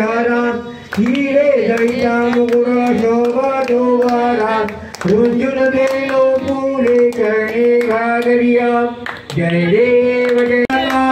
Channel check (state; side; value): identical; both; correlation 1.00